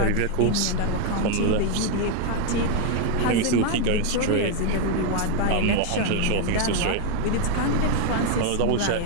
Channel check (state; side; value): different; both; correlation 0.01